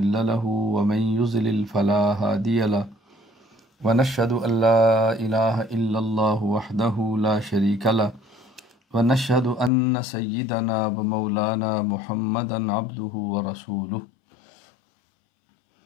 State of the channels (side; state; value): right; drops out; at 9.7 s